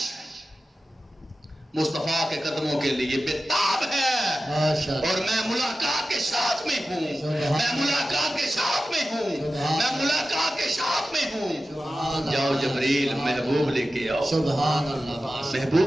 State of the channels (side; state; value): both; normal; correlation 0.94